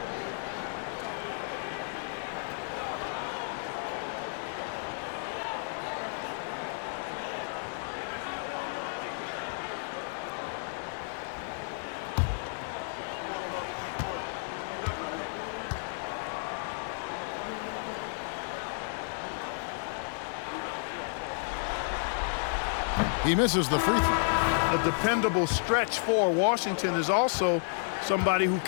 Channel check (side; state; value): right; silent; digital silence